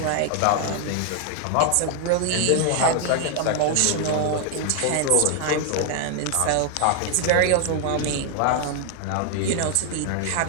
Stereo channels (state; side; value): different; both; correlation 0.00